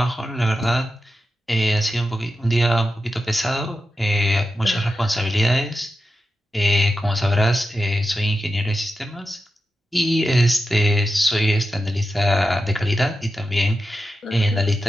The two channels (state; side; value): normal; both; correlation 0.91